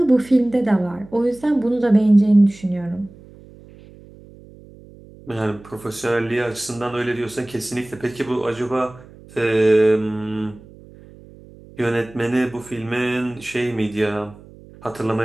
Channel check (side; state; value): right; noise; hum, 22 dB below the sound